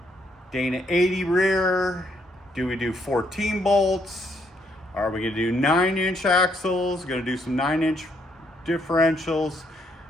Dana 80 rear? Do we do 14 bolts? Are we gonna do 9-inch axles? Gonna do some 9-inch differentials?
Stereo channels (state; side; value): normal; both; correlation 0.72